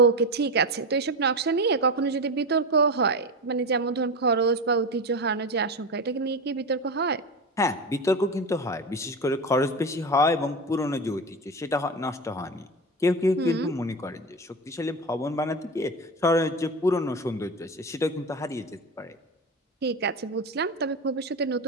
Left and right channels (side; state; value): both; normal; correlation 0.22